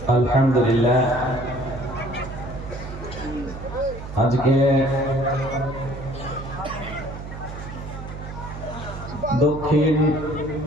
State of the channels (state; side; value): noise; right; hum, 11 dB below the sound